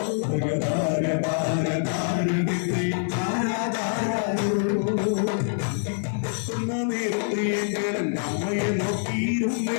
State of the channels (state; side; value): silent; right; digital silence